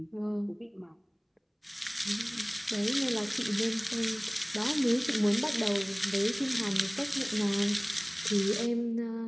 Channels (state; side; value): identical; both; correlation 1.00